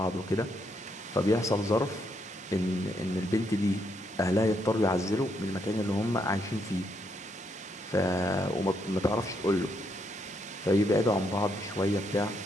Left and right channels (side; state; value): both; normal; correlation 0.76